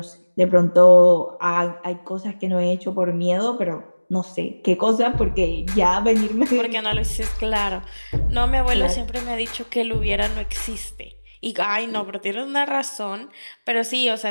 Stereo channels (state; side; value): inverted; both; correlation -1.00